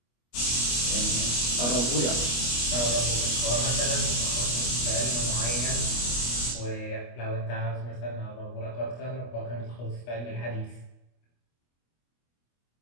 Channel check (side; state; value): right; late; 25 ms